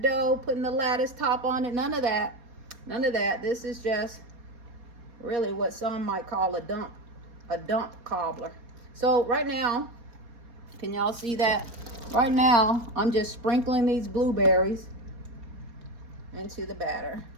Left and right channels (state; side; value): late; left; 4.4 ms